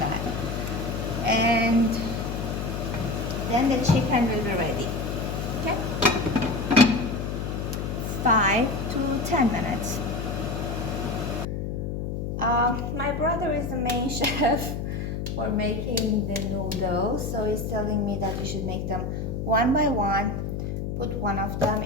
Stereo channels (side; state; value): left; noise; hum, 3 dB below the sound